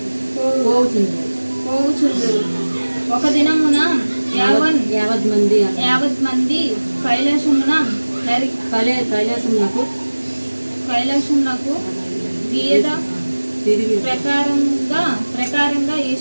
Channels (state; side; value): inverted; both; correlation -1.00